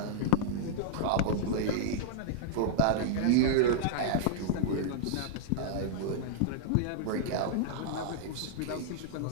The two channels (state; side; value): different; both; correlation -0.01